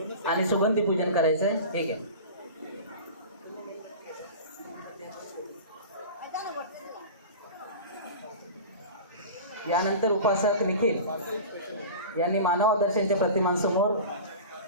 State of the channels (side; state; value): both; inverted; correlation -0.34